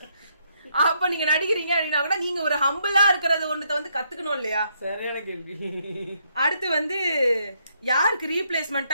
அப்ப நீங்க நடிக்கிறீங்க அப்படின்னா கூட நீங்க ஒரு ஹம்பிளா இருக்கிறது ஒண்ணுத்த வந்து கத்துக்கணும் இல்லையா? சரியான கேள்வி. அடுத்து வந்து யாருக்கு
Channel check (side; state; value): both; inverted; correlation -0.74